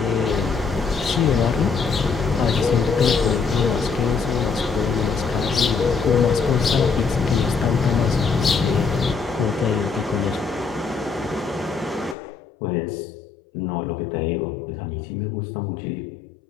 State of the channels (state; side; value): drops out; right; at 12.2 s